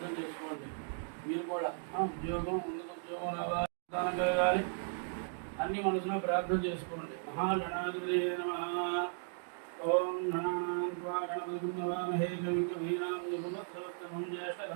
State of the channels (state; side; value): silent; left; digital silence